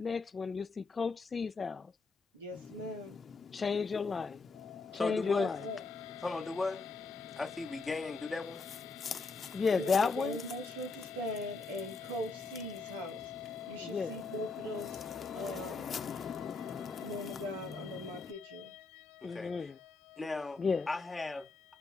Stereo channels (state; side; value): quieter; right; 4.1 dB